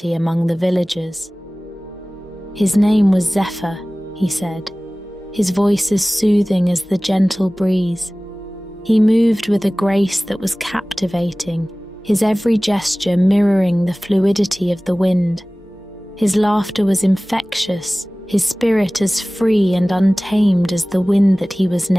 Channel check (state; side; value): normal; both; correlation 0.98